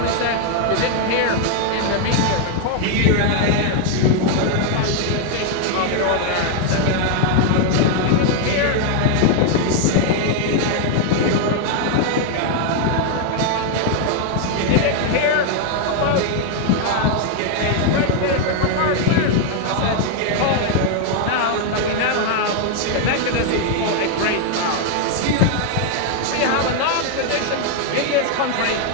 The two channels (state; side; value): different; both; correlation 0.00